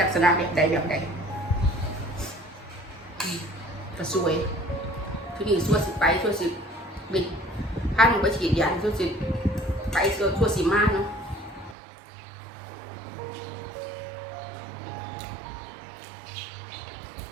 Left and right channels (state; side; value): drops out; left; at 11.8 s